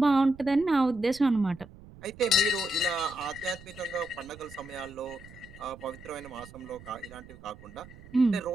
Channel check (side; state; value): right; noise; rumble, 19 dB below the sound